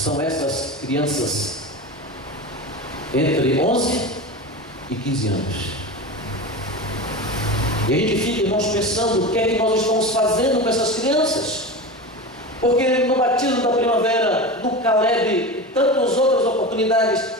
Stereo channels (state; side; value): normal; both; correlation 0.26